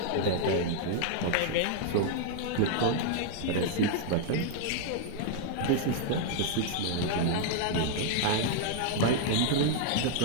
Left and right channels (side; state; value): both; different; correlation 0.00